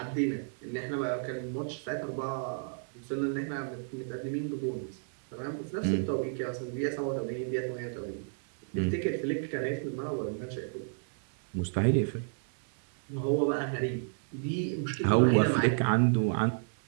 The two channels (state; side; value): silent; left; digital silence